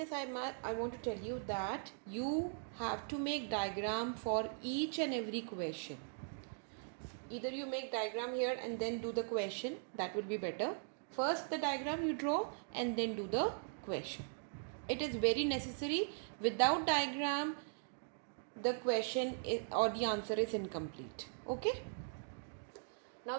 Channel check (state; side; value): silent; left; digital silence